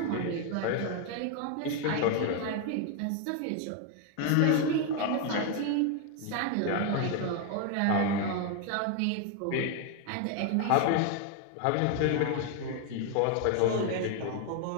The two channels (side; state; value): both; different; correlation 0.01